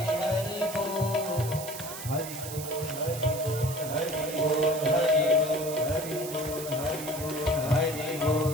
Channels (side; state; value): right; noise; hiss, 10 dB below the sound